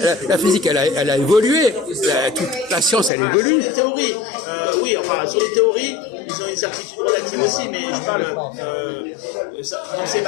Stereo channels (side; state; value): right; drops out; at 3.1 s